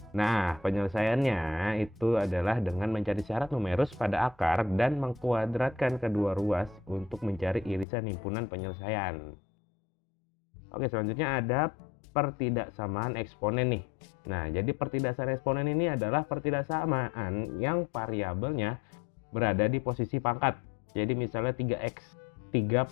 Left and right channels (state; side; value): drops out; right; at 7.9 s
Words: Nah, penyelesaiannya itu adalah dengan mencari syarat numerus pada akar dan mengkuadratkan kedua ruas untuk mencari irisan himpunan penyelesaian. Oke, selanjutnya ada pertidaksamaan eksponen nih. Nah, jadi pertidaksamaan eksponen ini adalah pertidaksamaan yang variabelnya berada di posisi pangkat. Jadi misalnya 3x, 3